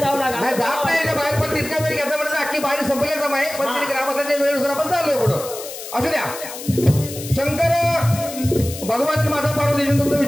जाऊ नका. नाही जात नाही याच्या बाहेर, पण तितका वेळ घेतला म्हणजे अख्खी बाहेर संपले जमा आहे. पण तरी ग्रामस्थांच्या वेळेनुसार आपण चाललोय पुढं. असू द्या. शंकर भगवान माता पार्वती तुमचं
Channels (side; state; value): left; noise; hiss, 11 dB below the sound